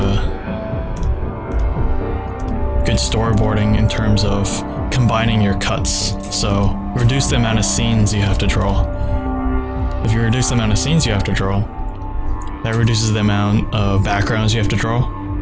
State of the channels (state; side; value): identical; both; correlation 1.00